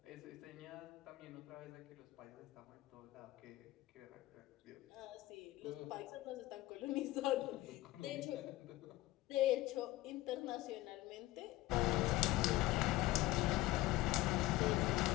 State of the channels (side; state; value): right; quieter; 17.1 dB